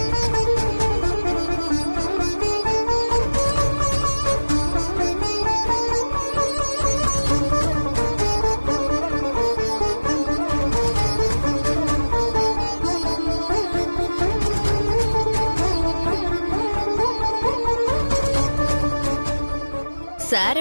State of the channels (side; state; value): both; inverted; correlation -1.00